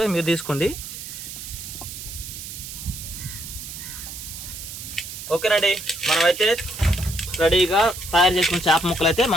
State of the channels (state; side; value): noise; right; hiss, 10 dB below the sound